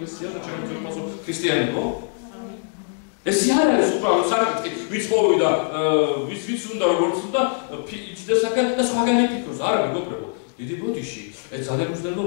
და ჩვენ ვფასო ქრისტიანებო? ეს არ არის უბრალოდ საკითხი, ვიც მოვიდა, ვიც უნდა როგორც უნდა იჭდეს აქ და სხვაგანი ფიქრობს, არა მეგობრებო. დიდი ბოდიში, ეს ძალიან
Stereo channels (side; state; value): right; silent; 64 dB below the other